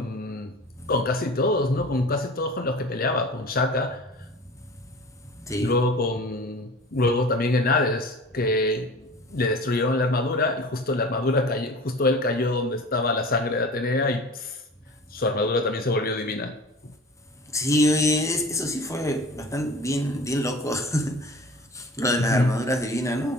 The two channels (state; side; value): normal; both; correlation 0.39